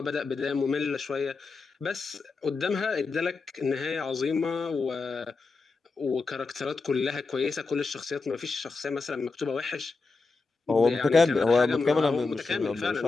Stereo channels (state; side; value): quieter; right; 4.1 dB